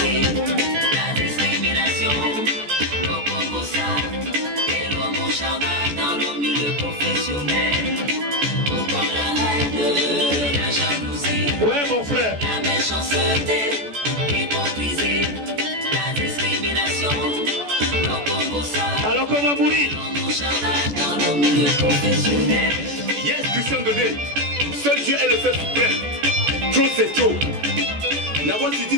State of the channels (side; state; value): left; late; 14 ms